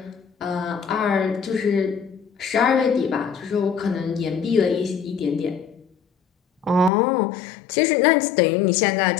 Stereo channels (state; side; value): drops out; right; at 6.9 s